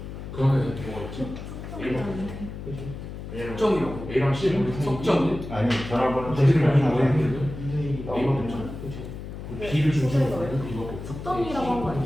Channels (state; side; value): noise; left; hum, 10 dB below the sound